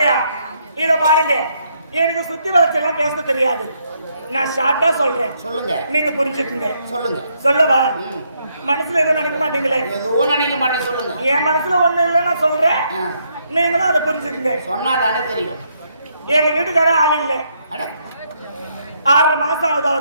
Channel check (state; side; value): inverted; both; correlation -0.74